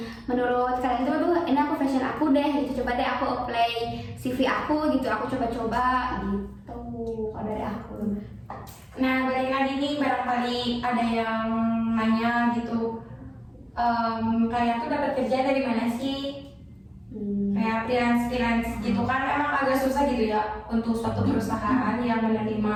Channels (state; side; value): identical; both; correlation 1.00